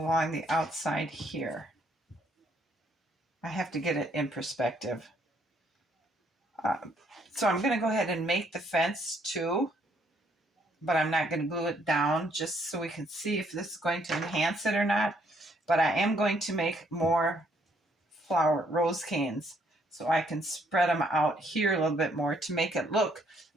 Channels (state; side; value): normal; both; correlation 0.69